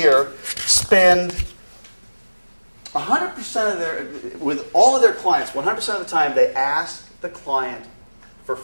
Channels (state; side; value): inverted; both; correlation -1.00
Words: spend 100% of their, with all of their clients, 100% of the time, they ask the client for